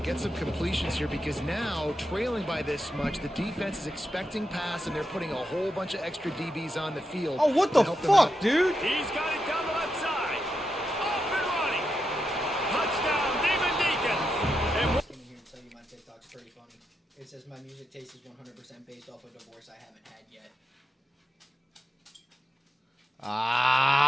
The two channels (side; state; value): both; normal; correlation 0.86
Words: get some completions here because now, trailing by this much, the defense is expecting pass, and they're putting a whole bunch of extra DBs on the field. Oh, what the fuck, dude? He's got it down the left side. Off and running. Touchdown, Demon Deacons. And I came in here and tell you my TikTok's pretty funny. It says my music taste is 100% based off a divorce I haven't had yet.